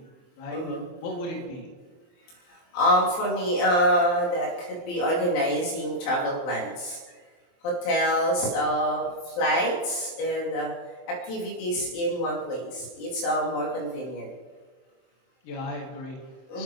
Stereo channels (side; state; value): right; late; 23 ms